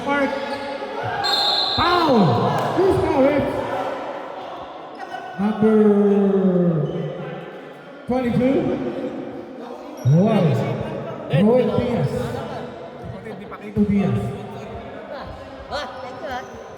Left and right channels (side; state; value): both; identical; correlation 1.00